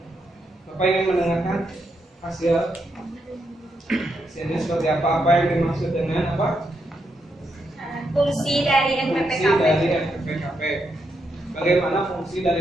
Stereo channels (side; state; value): both; normal; correlation 0.81